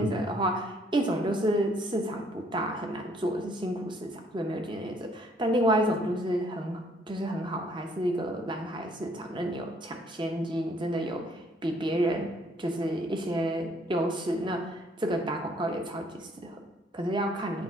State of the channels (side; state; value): both; normal; correlation 0.64